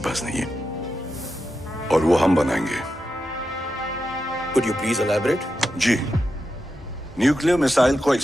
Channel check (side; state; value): both; normal; correlation 0.88